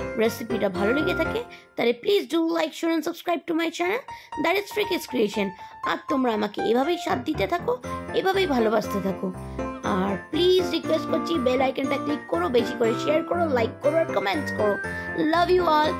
রেসিপিটা ভালো লেগে থাকে, তাহলে please do like, share and subscribe to my channel, that is free kids creation. আর তোমরা আমাকে এভাবেই সাথ দিতে থাকো, এভাবেই ভালোবাসতে থাকো। আর প্লিজ রিকোয়েস্ট করছি বেল আইকনটা ক্লিক করো, বেশি করে শেয়ার করো, লাইক করো আর কমেন্টস করো। Love you all,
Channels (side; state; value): both; identical; correlation 1.00